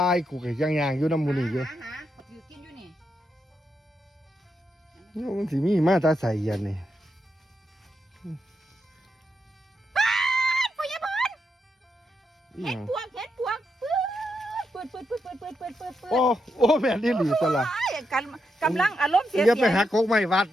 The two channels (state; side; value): normal; both; correlation 0.83